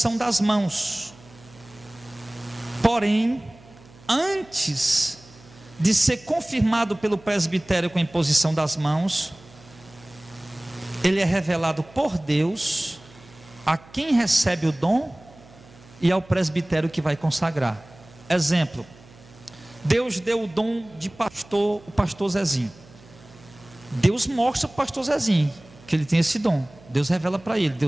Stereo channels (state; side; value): noise; right; hum, 24 dB below the sound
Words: das mãos. Porém, antes de ser confirmado pelo presbitério com a imposição das mãos, ele é revelado por Deus a quem recebe o dom e ao presbitério que vai consagrar. Exemplo, Deus deu o dom de pastor, o pastor Zezinho. Deus mostra para o pastor Zezinho que ele tem esse dom. Deus revela para ele,